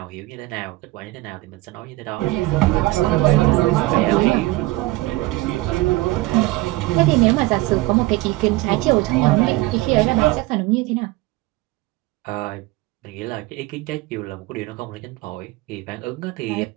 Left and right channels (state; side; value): quieter; left; 19.5 dB